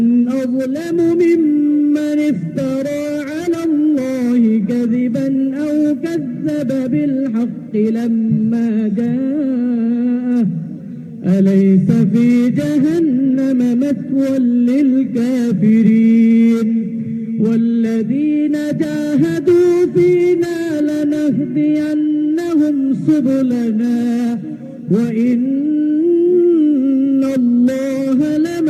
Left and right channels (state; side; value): identical; both; correlation 1.00